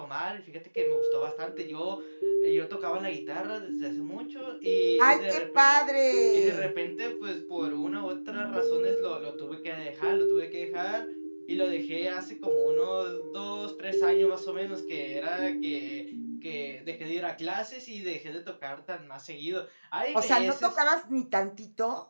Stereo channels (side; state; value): both; inverted; correlation -1.00